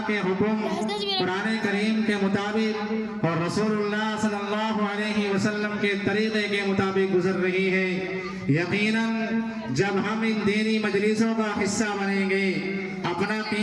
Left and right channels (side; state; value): both; identical; correlation 1.00